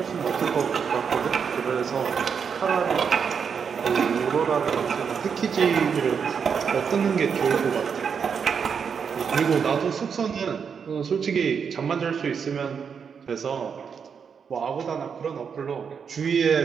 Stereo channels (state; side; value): quieter; left; 6.6 dB